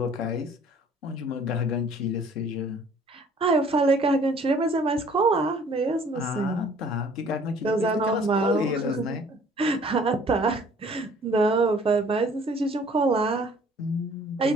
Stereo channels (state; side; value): normal; both; correlation 0.55